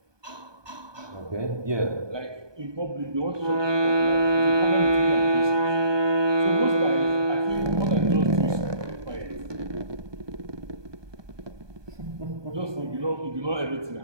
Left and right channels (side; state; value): left; late; 1.2 ms